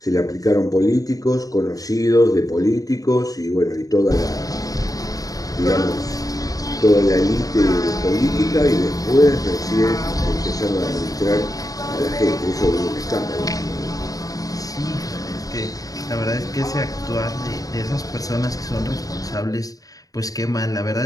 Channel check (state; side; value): late; right; 0.17 ms